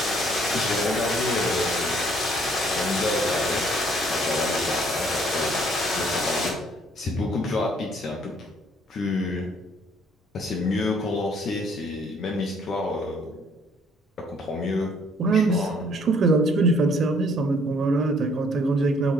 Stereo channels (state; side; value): normal; both; correlation 0.62